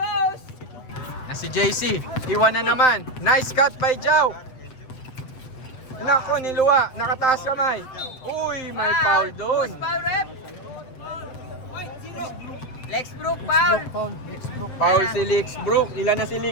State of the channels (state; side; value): late; right; 7.8 ms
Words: Na si JC. Iwan na naman. Nice cut by Jao. Nako, niluwa. Nakataas kamay. Uy, may foul doon. Foul rep! Lexbrook, foul! Foul si Lixbrook. Ilan na si